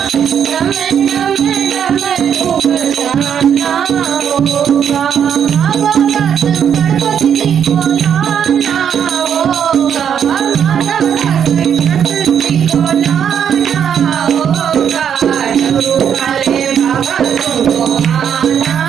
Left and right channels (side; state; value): left; quieter; 8.3 dB